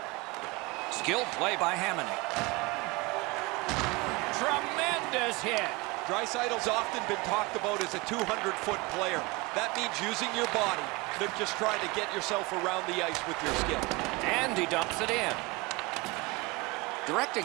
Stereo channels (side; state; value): left; quieter; 24.6 dB